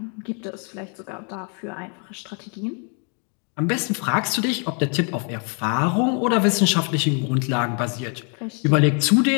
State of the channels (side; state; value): right; quieter; 39.9 dB